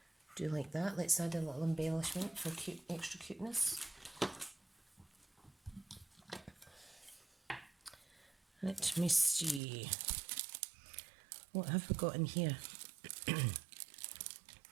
do like that. Let's add a little embellishment for cute, extra cuteness. Let me see. What have we got in here?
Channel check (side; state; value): left; drops out; at 9.6 s